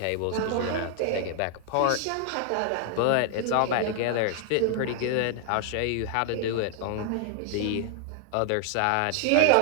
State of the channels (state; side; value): different; both; correlation 0.00